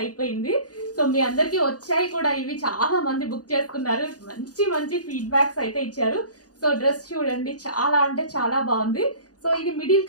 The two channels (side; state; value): right; late; 0.68 ms